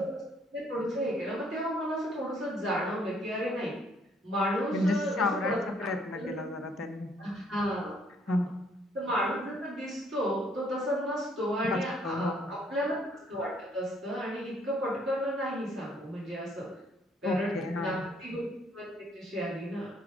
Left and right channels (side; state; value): both; normal; correlation 0.65